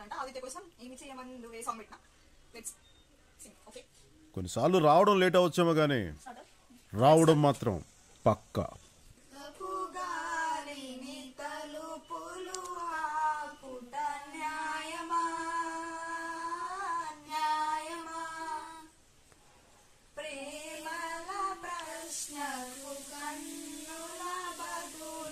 ఆదిత్య కోసం ఏమి చేయమని నువ్వు ఏ సాంగ్ పెట్టినా లెట్స్ సింగ్. ఓకే కొన్నిసార్లు రావడం లేట్ అవచ్చేమో కానీ రావడం మాత్రం పక్కా.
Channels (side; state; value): both; identical; correlation 1.00